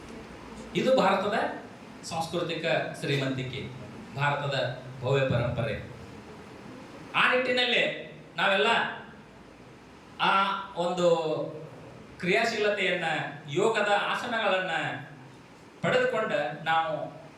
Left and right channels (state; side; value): identical; both; correlation 1.00